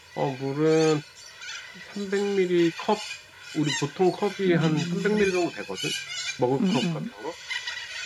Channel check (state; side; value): identical; both; correlation 1.00